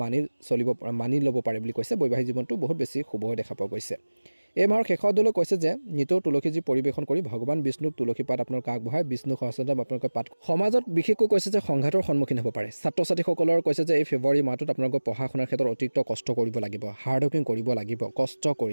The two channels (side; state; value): both; inverted; correlation -1.00